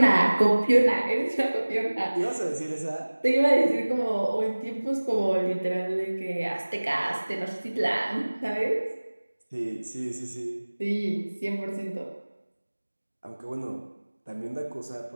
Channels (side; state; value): both; inverted; correlation -1.00